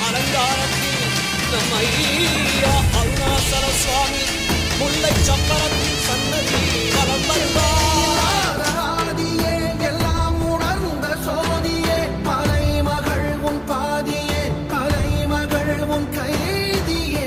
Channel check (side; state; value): both; identical; correlation 1.00